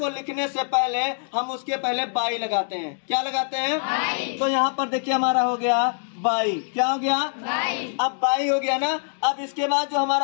लिखने से पहले हम उसके पहले बाई लगाते हैं। क्या लगाते हैं? बाई। तो यहाँ पर देखिए हमारा हो गया बाई। क्या हो गया? बाई। अब बाई हो गया ना। अब इसके बाद जो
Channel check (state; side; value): silent; right; digital silence